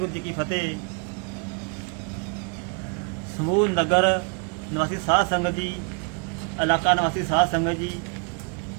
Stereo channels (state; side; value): quieter; left; 39.3 dB